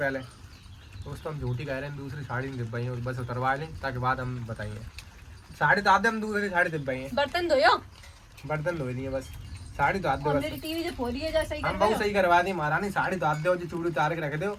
दोस्तों हम झूठी कह रहे हैं, दूसरी साड़ी नहीं दिब्बाई है, बस उतरवा लें ताकि बाद हम बताइए। साड़ी तो आते हम दूसरी साड़ी दिब्बाई है। बर्तन धोयो। बर्तन धो लिए बस, साड़ी तो आते और बस। मेरी टीवी जो फोड़ी है जैसे ही हम कर बहुत रहे सही करवा दी महारानी, साड़ी तो आते हो जो चूड़ी उतार के रख दो।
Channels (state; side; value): identical; both; correlation 1.00